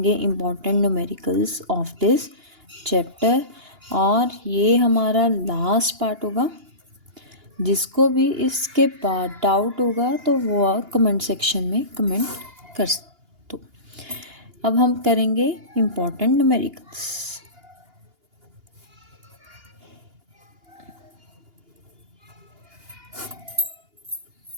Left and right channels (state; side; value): late; left; 2.8 ms